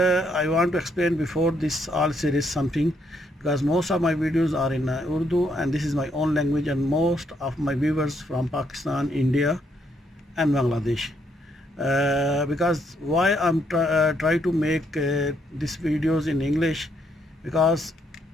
want to explain before this all series something, because most of my videos are in Urdu, and this is my own language, and most of my viewers from Pakistan, India and Bangladesh. Because why I'm try to make these videos in English, because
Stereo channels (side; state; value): both; normal; correlation 0.73